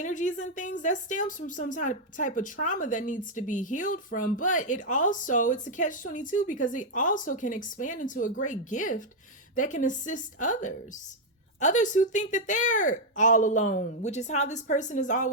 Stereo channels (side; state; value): both; normal; correlation -0.01